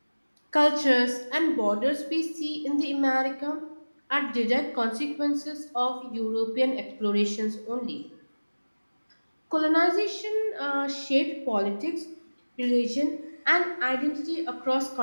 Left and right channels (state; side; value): inverted; both; correlation -1.00